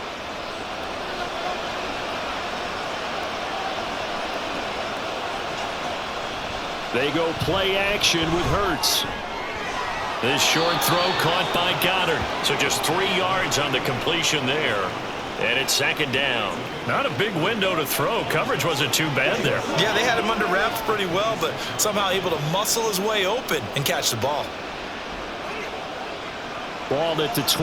They go play action with Hurts. This short throw caught by Goddard. So just 3 yards on the completion there. And it's 2nd down. Not a big window to throw. Coverage wasn't too bad there. Yeah, they had him under wraps pretty well, but somehow able to muscle his way open and catch the ball. Ball at the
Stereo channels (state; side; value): identical; both; correlation 1.00